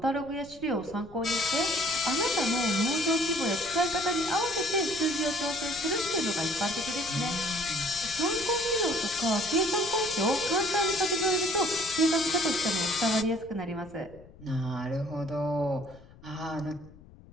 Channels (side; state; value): left; noise; rumble, 21 dB below the sound